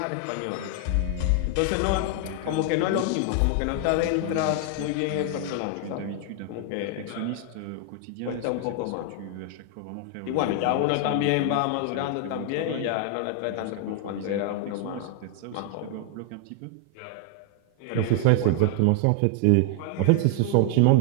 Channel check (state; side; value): different; both; correlation 0.00